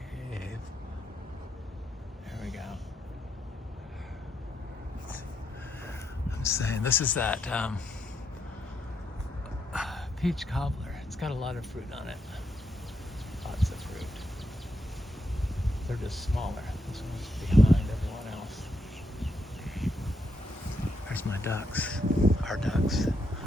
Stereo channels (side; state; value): both; normal; correlation 0.79